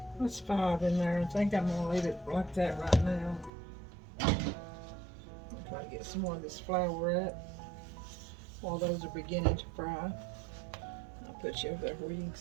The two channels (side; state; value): left; drops out; at 3.5 s